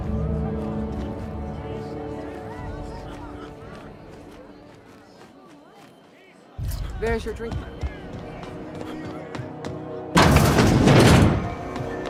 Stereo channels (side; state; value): both; identical; correlation 1.00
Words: There's your drink.